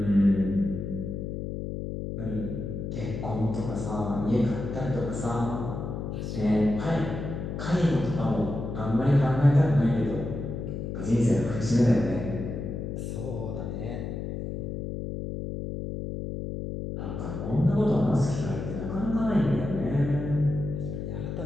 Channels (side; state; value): left; noise; hum, 5 dB below the sound